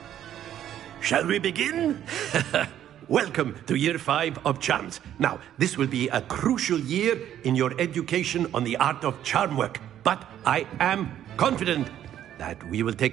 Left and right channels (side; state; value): left; quieter; 11.0 dB